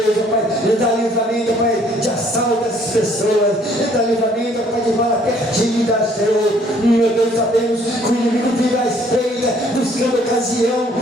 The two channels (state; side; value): normal; both; correlation 0.61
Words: ó Pai, ele dá livramento, Pai, de assalto dessas pessoas, ele dá livramento, Pai, de bala perdida, Senhor. Meu Deus, sabemos que o inimigo vive à espreita, buscando ocasião,